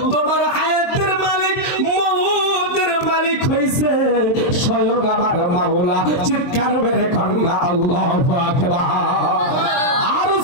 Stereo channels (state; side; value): late; right; 23 ms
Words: তোমার হায়াতের মালিক, মওতের মালিক হইছে স্বয়ং আমার মাওলা। চিৎকার মেরে কন্যা আল্লাহু আকবার। আর